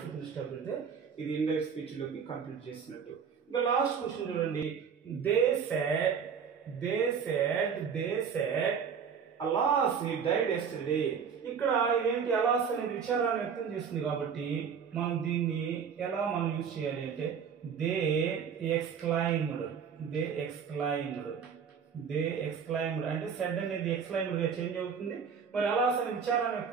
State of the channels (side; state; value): left; quieter; 6.8 dB